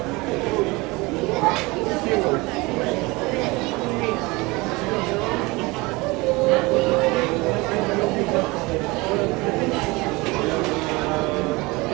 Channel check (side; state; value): left; quieter; 23.8 dB